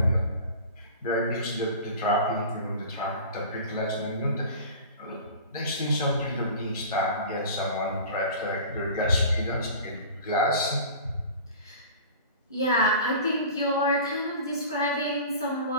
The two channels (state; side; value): inverted; both; correlation -0.39